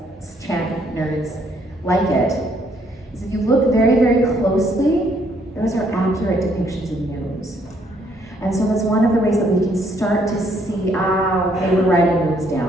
chant nerds like it is if you look very, very closely, those are accurate depictions of neumes. And so that's one of the ways that we can start to see, okay, we're writing neumes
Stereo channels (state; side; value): normal; both; correlation 0.68